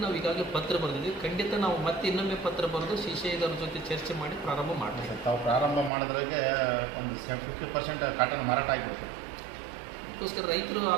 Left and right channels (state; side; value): drops out; left; at 5.9 s